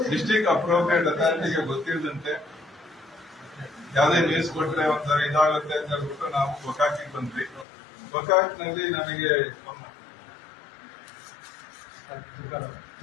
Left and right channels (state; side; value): drops out; right; at 7.7 s